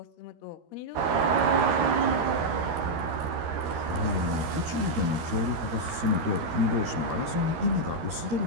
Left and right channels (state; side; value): late; left; 13 ms